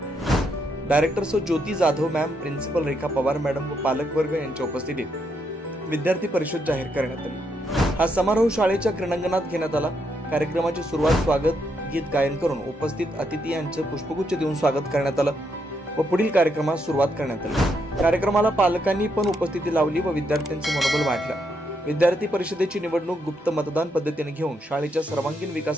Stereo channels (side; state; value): both; normal; correlation 0.78